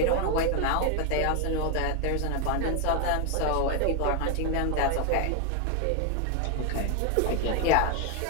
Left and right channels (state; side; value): different; both; correlation 0.01